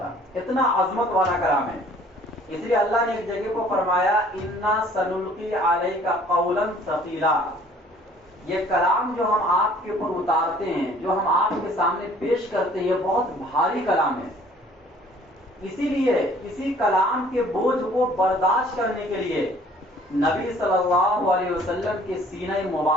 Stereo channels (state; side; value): normal; both; correlation 0.55